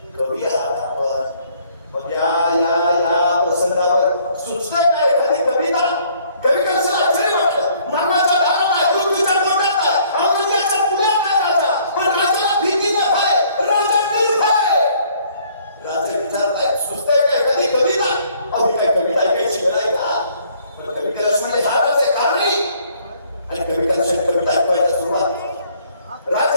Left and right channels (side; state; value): both; inverted; correlation -0.61